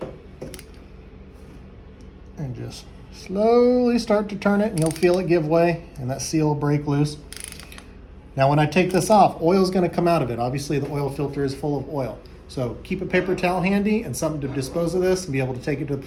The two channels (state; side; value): identical; both; correlation 1.00